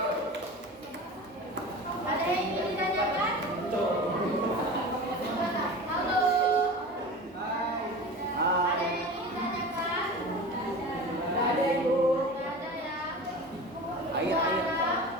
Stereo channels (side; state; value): both; normal; correlation 0.33